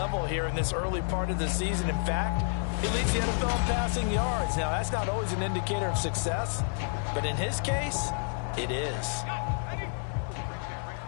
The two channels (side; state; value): right; silent; 58 dB below the other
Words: here in this early part of the season. In fact, he leads the NFL in passing yards. Now, that's not always an indicator of success, but in his case, it is.